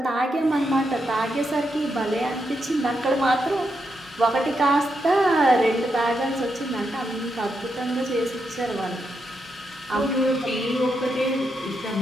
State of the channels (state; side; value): normal; both; correlation 0.83